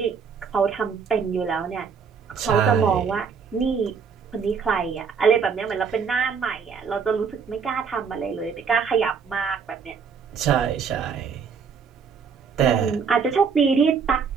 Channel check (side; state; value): left; quieter; 6.1 dB